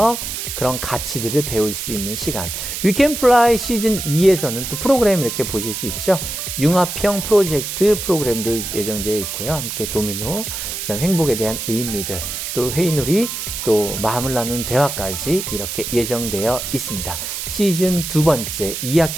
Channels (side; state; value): right; noise; hiss, 5 dB below the sound